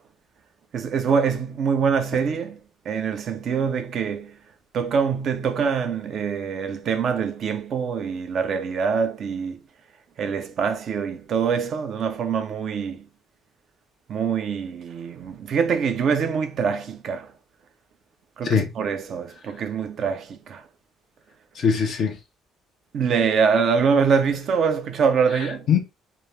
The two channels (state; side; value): quieter; left; 4.3 dB